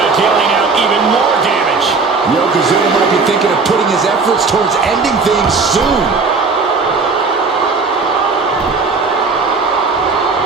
dealing out even more damage. Yokozuna might be thinking of putting his efforts towards ending things soon.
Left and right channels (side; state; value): left; quieter; 4.4 dB